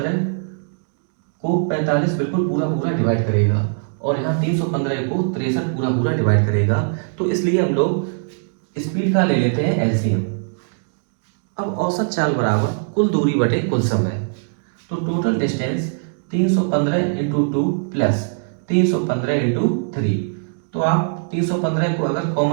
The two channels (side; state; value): left; silent; 65 dB below the other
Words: को 45 बिल्कुल पूरा पूरा डिवाइड करेगा और यहाँ 315 को 63 पूरा पूरा डिवाइड करेगा, तो इसलिए हम लोग स्पीड का ले लेते हैं एलसीएम। अब औसत चाल बराबर कुल दूरी बटे कुल समय, तो total distance 315 into 2 plus 315 into 3। तो आप 315 को अगर